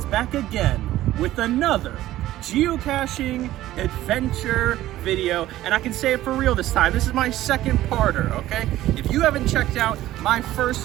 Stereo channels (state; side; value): quieter; left; 14.7 dB